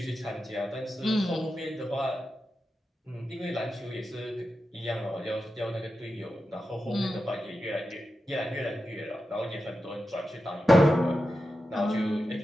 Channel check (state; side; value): normal; both; correlation 0.90